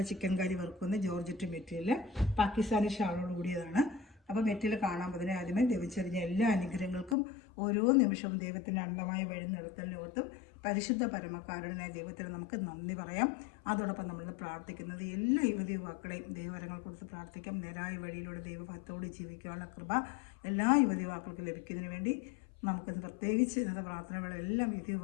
ചിക്കൻ കറി വറുക്കുന്ന ജോർജറ്റ് മെറ്റീരിയൽ, പാകിസ്ഥാനി ഷാളോട് കൂടിയതാണ്. അപ്പോൾ മെറ്റീരിയൽ കാണാൻ പോകുന്നതിന് ആദ്യമേ ദൈവച്ചറിഞ്ഞ എല്ലാ അനുഗ്രഹങ്ങൾക്കും ഓരോ നിമിഷവും ദൈവത്തിൻ്റെ അന്ധമായ വഴി നടത്തലിനോർത്തും പരിശുദ്ധ പരമകാരുണ്യനായ ദൈവത്തിന് നമുക്ക് നന്ദി പറയാം. അതോടൊപ്പം നമ്മൾ പ്രാർത്ഥിക്കുന്നത് എല്ലാ യുവതി യുവാക്കളെയും ദൈവവരങ്ങൾ കൊടുത്ത് പ്രാർത്ഥിക്കാം. നേരായ വഴിയിലൂടെ ദൈവഭക്തോട് ജീവിക്കാനുള്ള കൃപ എല്ലാ യുവതി യുവാക്കൾക്കും ലഭിക്കുന്നതിന് വേണ്ടി നമുക്ക് പ്രത്യേകിച്ച് ഇന്നത്തെ പ്രാർത്ഥനകളെല്ലാം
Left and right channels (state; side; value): drops out; right; at 7.2 s